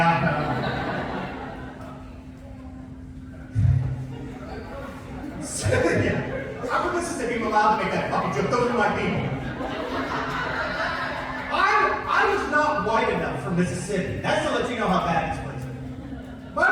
Yeah. I'm from Mississippi, I'm allowed to make that fucking joke. Those are my people. I was not white enough for Mississippi. That's to let you know how bad this place is.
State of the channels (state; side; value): identical; both; correlation 1.00